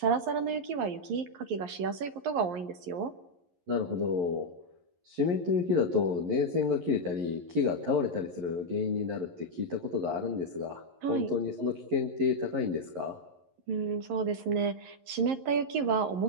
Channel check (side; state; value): left; late; 11 ms